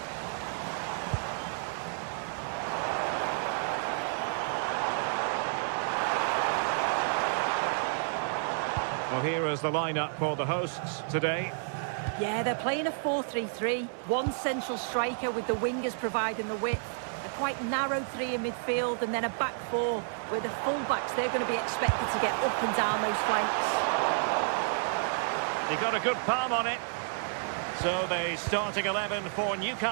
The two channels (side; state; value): left; silent; 57 dB below the other